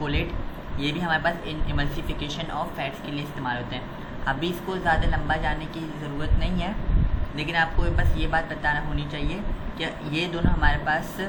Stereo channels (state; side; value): identical; both; correlation 1.00